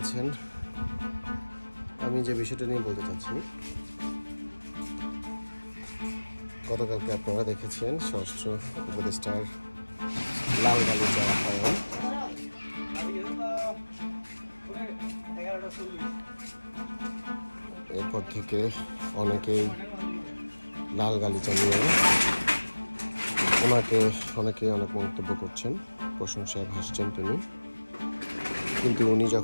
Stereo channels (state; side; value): inverted; both; correlation -1.00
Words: আছেন? আমি যে বিষয়টা নিয়ে বলতে চাচ্ছি, গতকালকে আপনারা দেখেছেন স্বরাষ্ট্র উপদেষ্টার লাল গালিচা আপ্যায়ন। এরপর থেকে অনেকেই লাল গালিচা নিয়ে অনেকে অনেক মন্তব্য করছেন, প্রশংসায় ভাসছেন তিনি। কিন্তু উনি